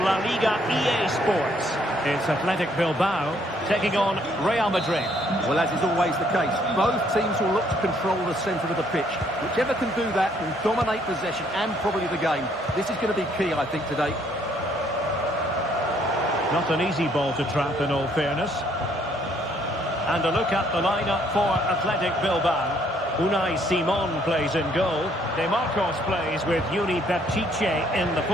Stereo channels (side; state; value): both; normal; correlation 0.66